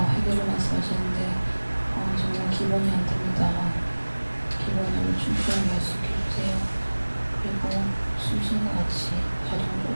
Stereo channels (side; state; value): both; inverted; correlation -1.00